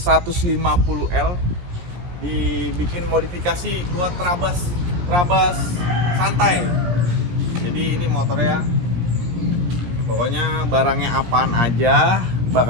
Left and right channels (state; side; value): late; left; 17 ms